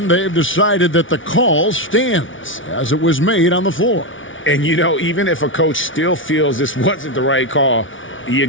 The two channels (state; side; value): late; right; 0.56 ms